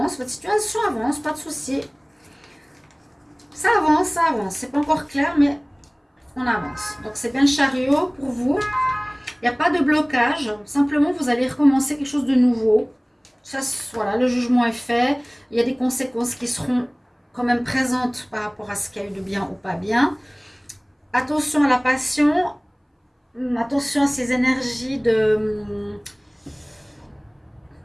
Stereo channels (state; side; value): identical; both; correlation 1.00